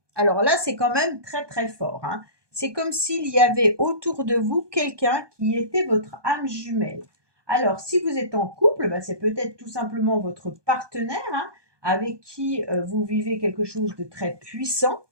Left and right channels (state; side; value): late; left; 1.2 ms